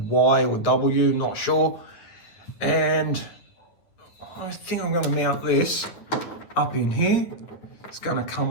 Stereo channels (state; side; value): late; right; 9.9 ms